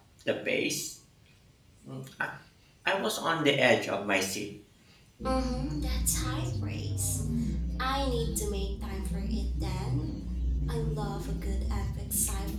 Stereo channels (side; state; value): both; identical; correlation 1.00